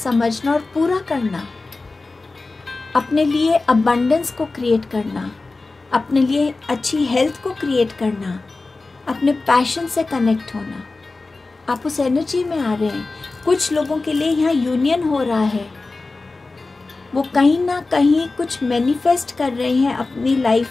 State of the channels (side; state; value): right; quieter; 3.5 dB